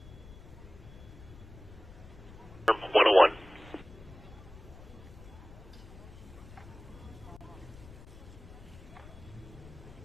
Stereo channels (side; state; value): left; noise; rumble, 17 dB below the sound